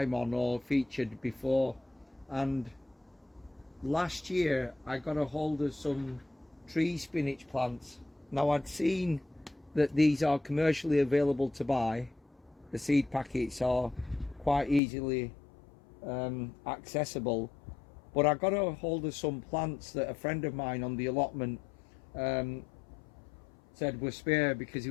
on or featured before. And last year I got a hold of some tree spinach plants. Now I'd seen that these are commercially available to buy. The seed packets are quite easily accessible, but I got a hold of some plants that a friend of mine on the allotment said were spare because he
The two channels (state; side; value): drops out; right; at 14.8 s